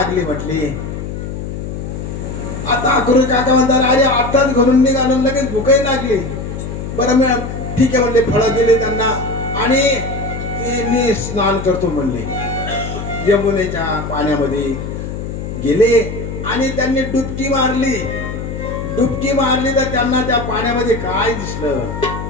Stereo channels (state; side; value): noise; left; hum, 6 dB below the sound